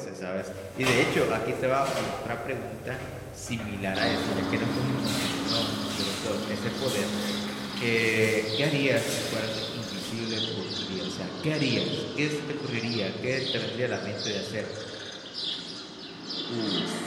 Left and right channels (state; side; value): identical; both; correlation 1.00